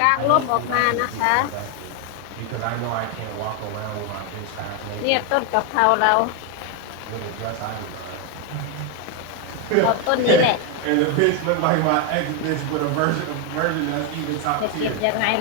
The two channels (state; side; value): different; both; correlation 0.01